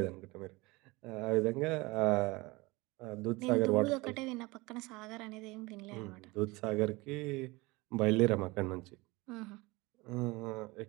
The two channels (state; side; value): quieter; left; 23.1 dB